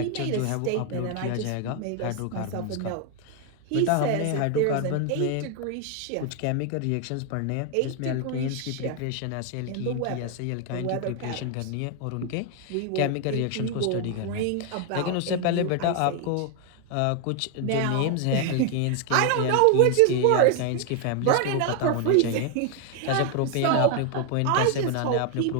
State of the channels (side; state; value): both; different; correlation 0.01